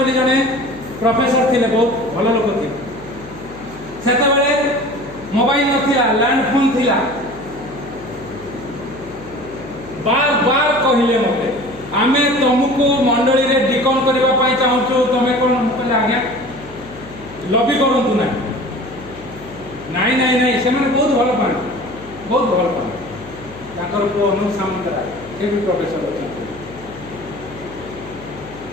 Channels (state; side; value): noise; left; hum, 18 dB below the sound